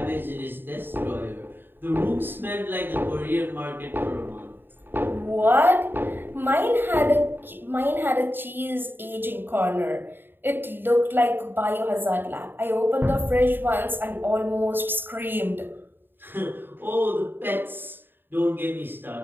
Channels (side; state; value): left; late; 0.097 ms